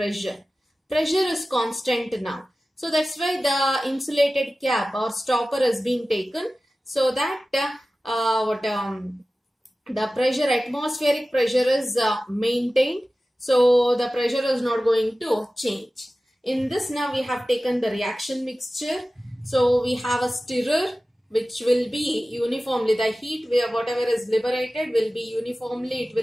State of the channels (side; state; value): both; normal; correlation 0.96